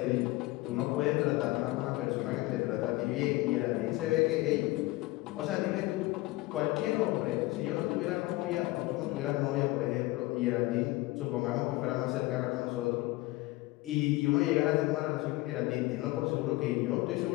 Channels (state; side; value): quieter; right; 20.0 dB